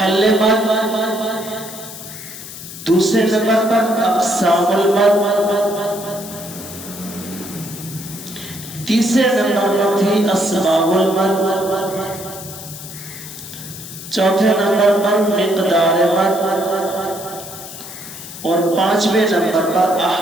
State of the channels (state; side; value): noise; left; hiss, 13 dB below the sound